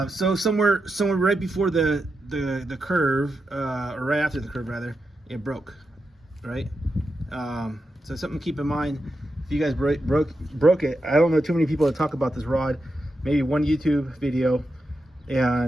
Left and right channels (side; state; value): both; normal; correlation 0.87